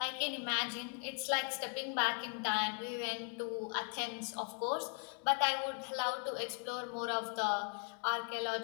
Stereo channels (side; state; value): right; quieter; 39.0 dB